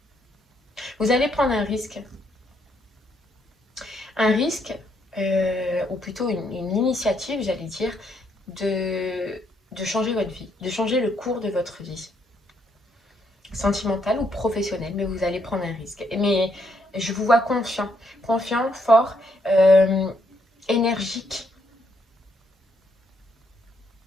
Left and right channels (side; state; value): both; normal; correlation 0.73